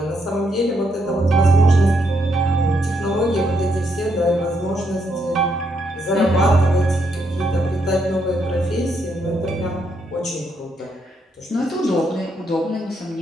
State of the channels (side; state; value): both; normal; correlation 0.77